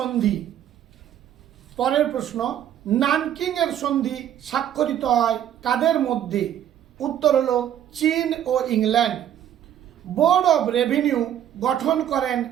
পরের প্রশ্ন, নানকিং এর সন্ধি স্বাক্ষরিত হয় কাদের মধ্যে? উত্তর হলো চীন ও ইংল্যান্ড। বোর্ড অব রেভিনিউ গঠন করেন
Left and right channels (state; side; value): quieter; left; 10.6 dB